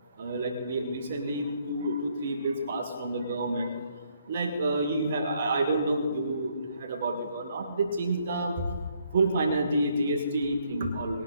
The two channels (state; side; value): inverted; both; correlation -0.70